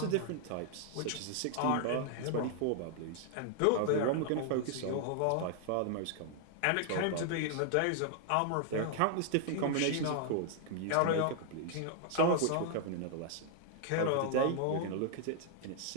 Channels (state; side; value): different; both; correlation 0.00